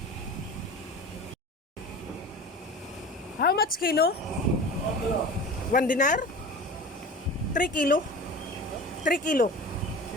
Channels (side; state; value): both; normal; correlation 0.36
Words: How much kilo? 1 dinar? 3 kilo? 3 kilo?